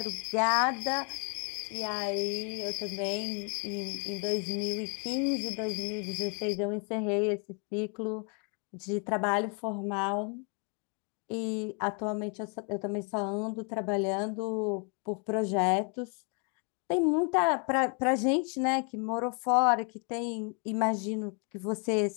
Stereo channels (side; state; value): right; quieter; 38.4 dB